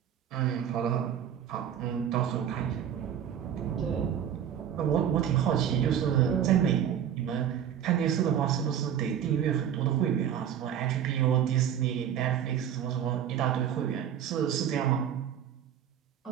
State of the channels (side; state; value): left; quieter; 9.4 dB